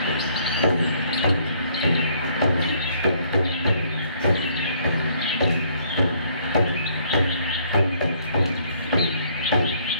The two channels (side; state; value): both; inverted; correlation -0.64